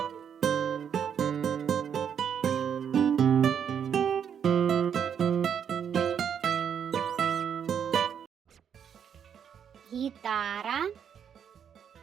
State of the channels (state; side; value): quieter; left; 8.0 dB